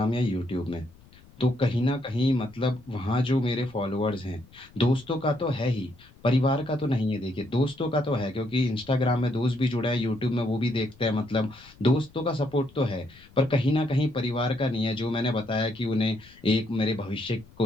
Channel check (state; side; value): noise; left; rumble, 25 dB below the sound